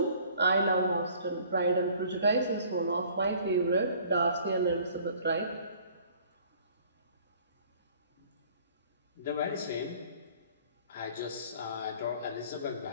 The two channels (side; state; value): both; inverted; correlation -0.54